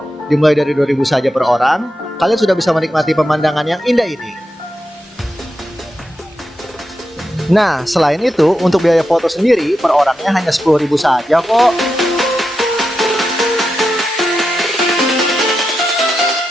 Dimulai dari 2.000 saja per orang, kalian sudah bisa menikmati pemandangan yang indah ini. Nah, selain itu, untuk biaya foto sendiri per orangnya hanya 10.000 saja kok.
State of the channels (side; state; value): both; normal; correlation 0.88